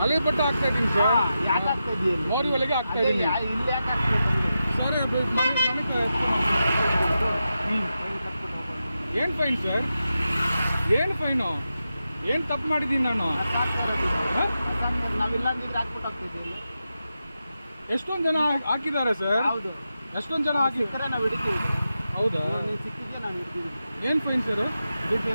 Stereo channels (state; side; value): inverted; both; correlation -0.89